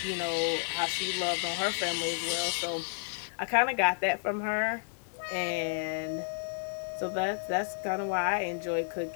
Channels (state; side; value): silent; right; digital silence